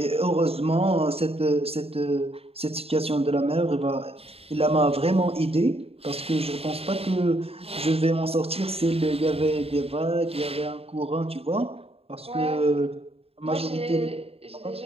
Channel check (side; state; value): left; late; 0.28 ms